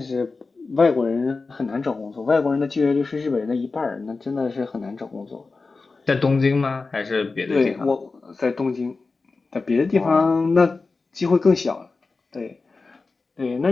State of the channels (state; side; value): quieter; right; 4.0 dB